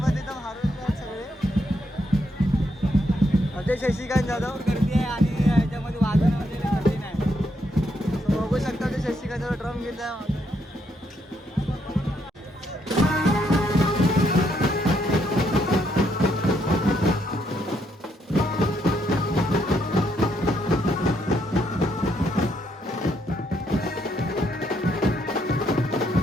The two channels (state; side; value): normal; both; correlation 0.75